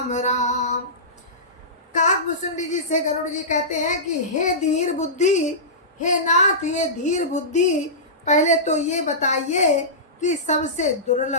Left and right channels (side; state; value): both; normal; correlation -0.19